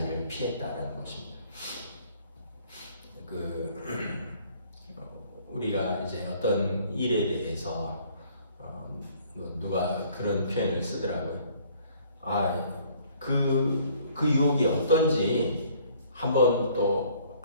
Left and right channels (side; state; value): both; inverted; correlation -0.58